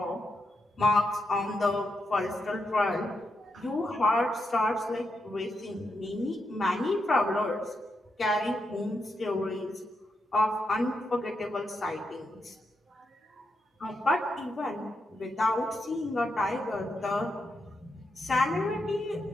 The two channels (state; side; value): normal; both; correlation 0.83